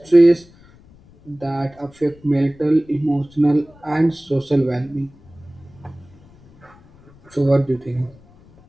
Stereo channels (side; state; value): left; noise; rumble, 26 dB below the sound